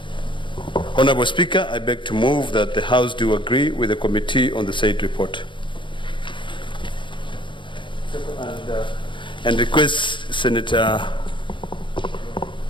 Honorable Speaker, I beg to move that the House do agree with the committee on the said report. And request Senator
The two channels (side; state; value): right; late; 0.23 ms